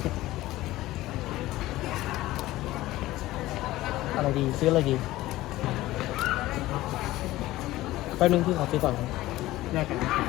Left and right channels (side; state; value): right; quieter; 16.8 dB